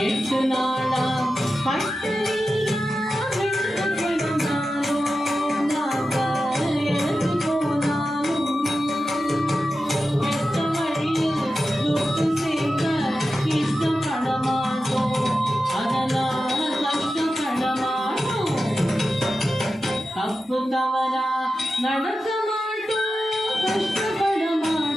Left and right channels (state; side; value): normal; both; correlation 0.92